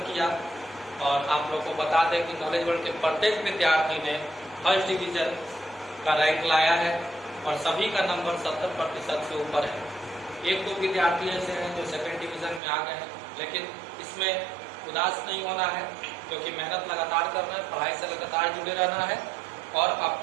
किया और आप लोग को बता दें कि नॉलेज वर्ल्ड के प्रत्येक विद्यार्थी ने फर्स्ट डिवीजन का रैंक लाया है और सभी का नंबर 70% से ऊपर है। एक दो विद्यार्थी ऐसे हैं जो सेकंड डिवीजन में आ गए हैं, लेकिन इसमें उदास नहीं होना है, क्योंकि मेहनत लगातार करना है, पढ़ाई से लगातार जुड़े रहना है और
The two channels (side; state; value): left; drops out; at 12.6 s